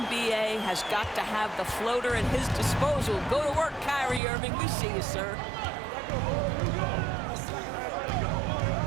has got to have the floater at his disposal. Go to work, Kyrie Irving. We see you, sir.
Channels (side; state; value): left; drops out; at 4.2 s